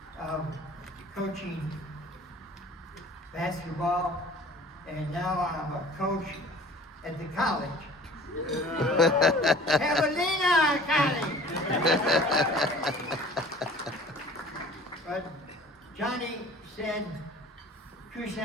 of coaching basketball, and now I'm a coach at the college. Javelinas College! But Johnny said,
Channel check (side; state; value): both; normal; correlation 0.47